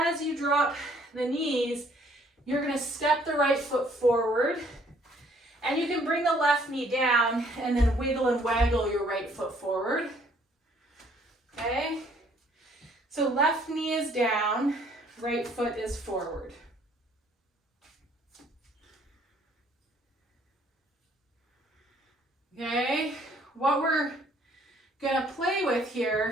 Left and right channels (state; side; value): normal; both; correlation 0.62